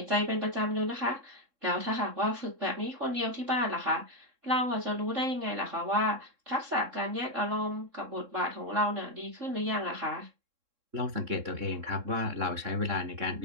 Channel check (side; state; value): left; late; 3.6 ms